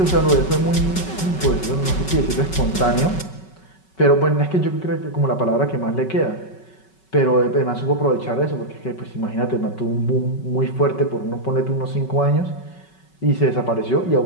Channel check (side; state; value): right; late; 5.3 ms